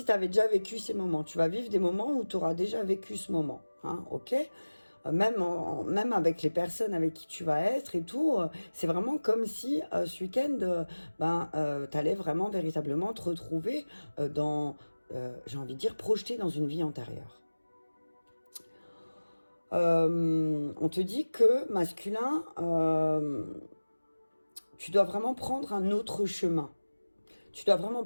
tu avais déjà vécu ces moments. Tu vas vivre des moments où tu auras déjà vécu ce moment. Hein, ok? Même avec les personnes avec qui tu vas être et tout, c'est vraiment comme si ce week-end, tu allais vraiment véritablement te retrouver dans, j'ai envie de dire, projeté dans une vie antérieure. On te dit que masculin, tu dois vraiment prendre un autre chemin. Tu dois vraiment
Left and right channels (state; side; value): inverted; both; correlation -1.00